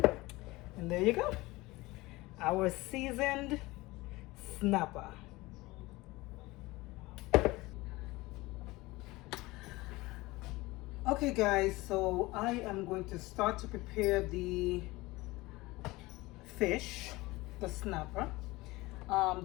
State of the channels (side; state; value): right; quieter; 20.8 dB